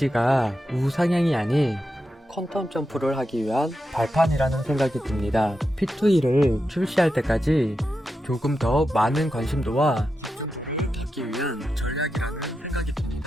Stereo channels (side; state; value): both; normal; correlation 0.88